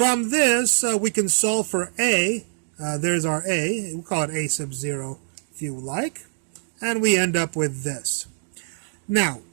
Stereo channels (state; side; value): silent; left; digital silence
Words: this, we can solve for a. There's our a. We'll call it a sub 0 if you like. And we end up with this. Now,